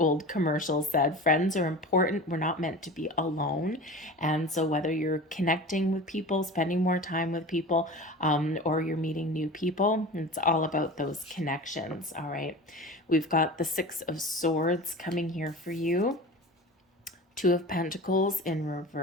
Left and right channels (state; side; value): normal; both; correlation 0.34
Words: commercial said. Friends are important. We're not meant to be alone. And so whether you're connecting with people, spending more time with people, or you're meeting new people, it's all about those connections. All right. We've got the Six of Swords coming here for you. Two of Pentacles in